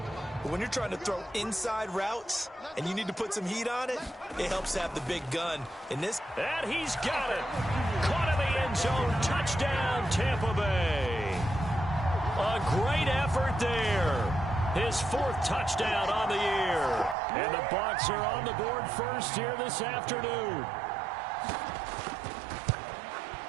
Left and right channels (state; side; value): drops out; left; at 17.2 s